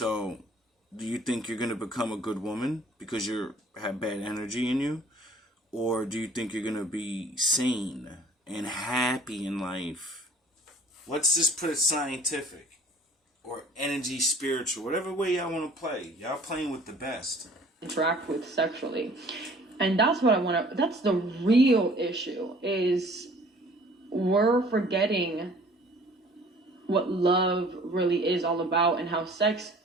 do you think you're going to become a good woman because you have bad energy in you? Or do you think you're going to be sane and happy in life? Let's just put it scientific. Or energy spiritual. Whatever way y'all want to play. Y'all playing with the best. Interact with sexually. And that's what that's the real issue, is we're forgetting what love really is all about, and how sex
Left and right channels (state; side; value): normal; both; correlation 0.52